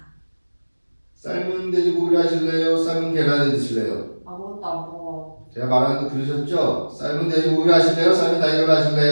삶은 돼지고기를 하실래요? 삶은 계란을 드실래요? 아무것도 안 먹어. 제가 말하는 거 들으셨죠? 삶은 돼지고기를 하실래요? 삶은 달걀을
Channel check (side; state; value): both; inverted; correlation -1.00